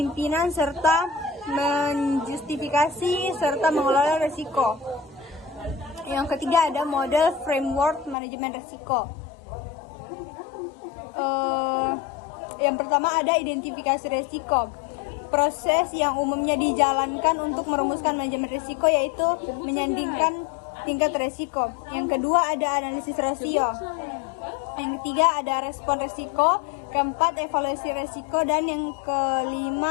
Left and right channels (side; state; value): right; drops out; at 8.2 s